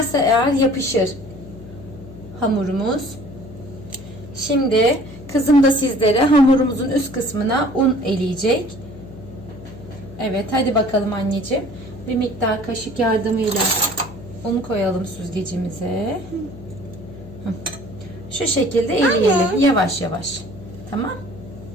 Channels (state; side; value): noise; left; hum, 15 dB below the sound